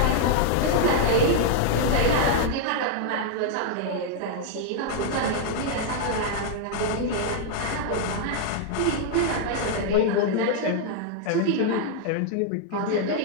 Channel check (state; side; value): different; both; correlation -0.01